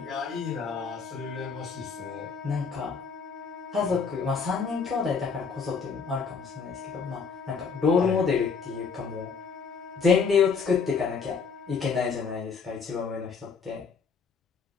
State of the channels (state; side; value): quieter; right; 5.5 dB